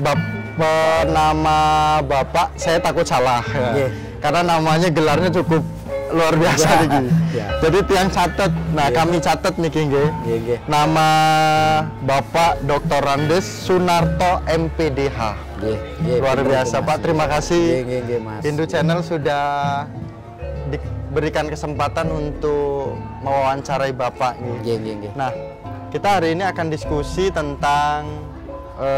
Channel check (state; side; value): identical; both; correlation 1.00